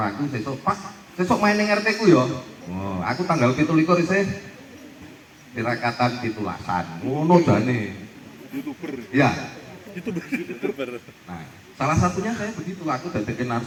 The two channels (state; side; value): identical; both; correlation 1.00